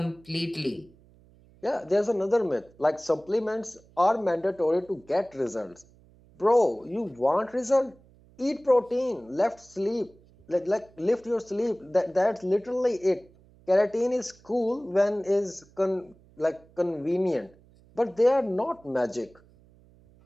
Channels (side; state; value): right; noise; hum, 28 dB below the sound